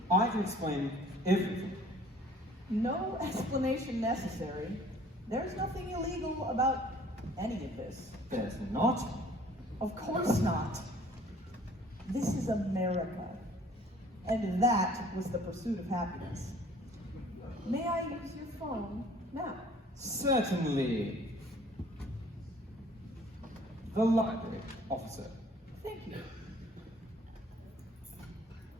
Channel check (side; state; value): both; normal; correlation 0.53